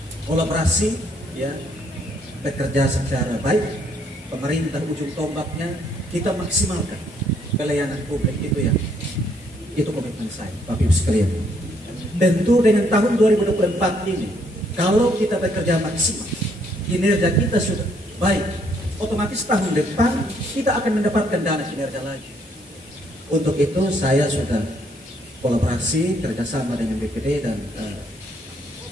kolaborasi, ya, bekerja secara baik. Pemerintah ujung tombaknya kita maksimalkan pelayanan publik itu komitmen saya, Bapak Ibu sekalian. Tentu dengan tahun 2024 ini, kalau kita bekerja maksimal, kinerja kita sudah baik, otomatis tahun depan kita akan mendapatkan dana kinerja lagi. Untuk itu saya sudah kolaborasi kerjasama dengan BPD dan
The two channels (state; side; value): normal; both; correlation 0.69